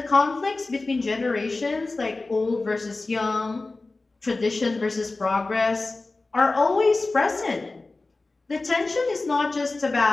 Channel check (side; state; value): right; quieter; 3.4 dB